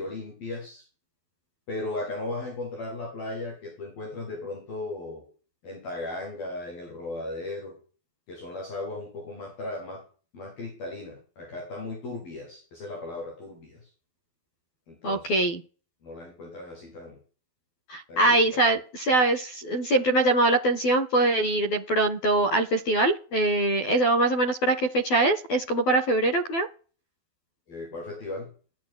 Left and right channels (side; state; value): right; late; 12 ms